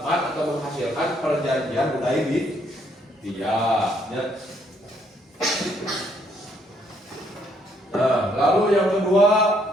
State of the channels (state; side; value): normal; both; correlation 0.70